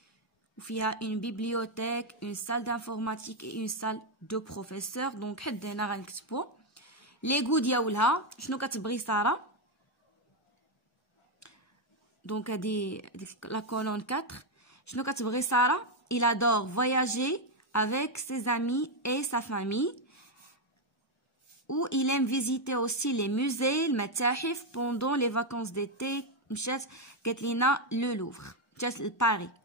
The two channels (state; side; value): normal; both; correlation 0.03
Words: وفيها une bibliothèque, une salle d'informatique et une salle de professeurs. دونك حد هنا غنكتبو لي غو ديالها شنو كتبغي ساره. دونك هادي لا كولون 4 شنو كتبغي ساره؟ il adore voyager avec ses amis et sa famille. Ou il aime visiter aussi les musées, المتاحف. pendant les vacances d'été مشات قالت لينا لو لوفر مشات لباريس.